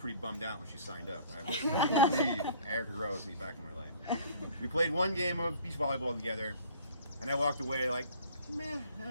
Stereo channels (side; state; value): both; inverted; correlation -0.51